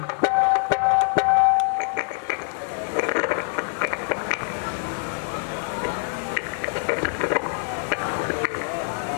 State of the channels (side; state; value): right; silent; 62 dB below the other